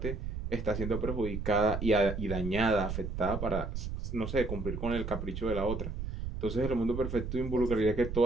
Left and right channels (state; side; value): noise; right; rumble, 5 dB below the sound